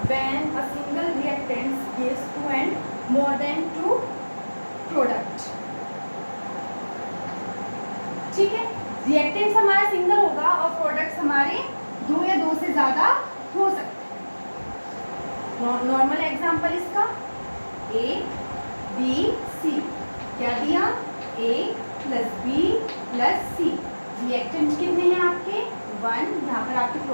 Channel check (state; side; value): inverted; both; correlation -1.00